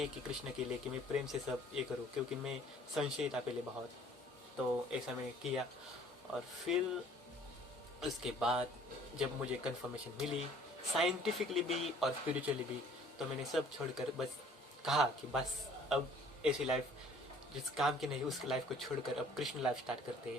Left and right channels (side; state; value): both; normal; correlation 0.54